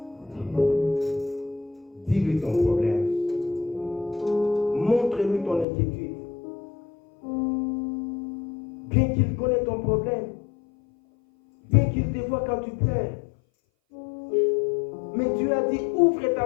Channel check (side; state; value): right; drops out; at 5.7 s